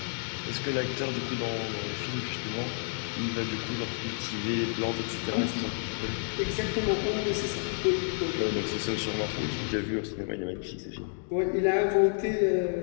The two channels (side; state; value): right; silent; 58 dB below the other